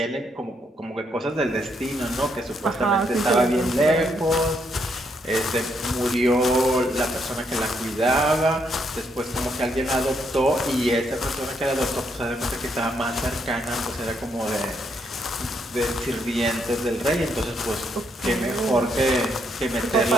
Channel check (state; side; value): normal; both; correlation 0.75